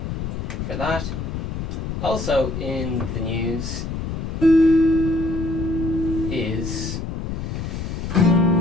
for that. Also in the news is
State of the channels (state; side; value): noise; left; rumble, 4 dB below the sound